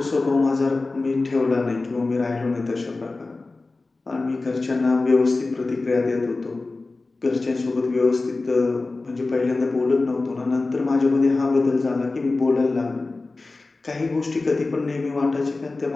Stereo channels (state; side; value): quieter; right; 3.5 dB